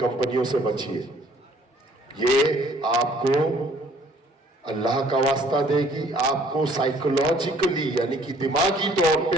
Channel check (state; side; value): normal; both; correlation 0.59